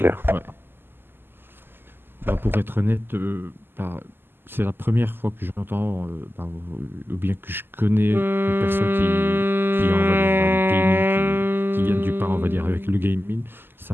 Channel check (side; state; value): left; late; 0.10 ms